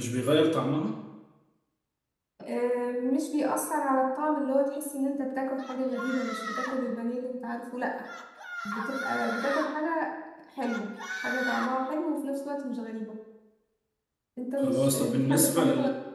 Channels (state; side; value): identical; both; correlation 1.00